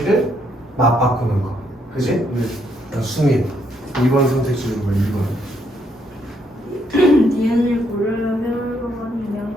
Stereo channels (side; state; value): both; normal; correlation 0.73